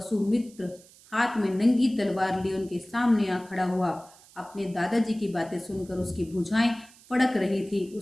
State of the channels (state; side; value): noise; right; hiss, 25 dB below the sound